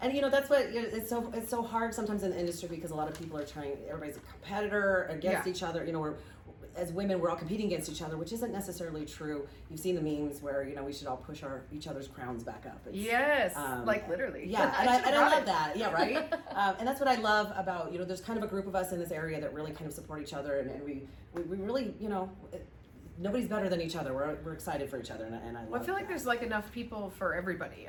And that's what it's so hard sometimes in the industry because a lot of people are trying. Everybody's a competitor against each other. As women, we're all competing against each other, which isn't necessarily true. You've seen the memes where we should all push each other's crowns back up. Yes, like literally. Yeah, and I love that. Yeah, right. And that's what I love about there's kind of a group of us in this area that really kind of support each other, and we really nobody's better than each other. We're excited for each other, and I love. Well, I feel like there's enough people for everybody.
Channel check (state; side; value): identical; both; correlation 1.00